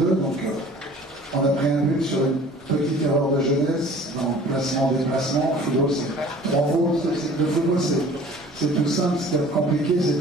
Donc on a pris un but sur une petite erreur de jeunesse dans le placement-déplacement. Le football, c'est 3 fautes. Le football, c'est tout simple. Ce qui est compliqué, c'est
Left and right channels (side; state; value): both; normal; correlation 0.48